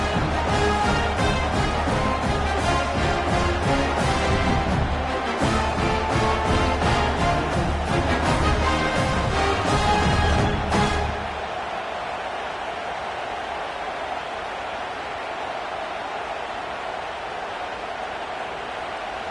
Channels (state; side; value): identical; both; correlation 1.00